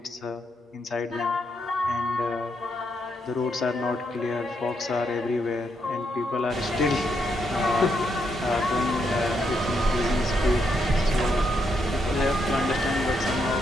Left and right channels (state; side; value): normal; both; correlation 0.79